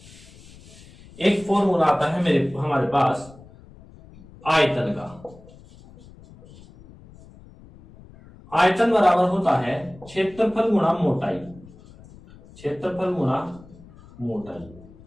एक फॉर्मूला आता है हमारे पास आयतन का। आयतन बराबर होता है क्षेत्रफल गुणा मोटाई, क्षेत्रफल गुणा मोटाई।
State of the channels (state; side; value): noise; left; rumble, 22 dB below the sound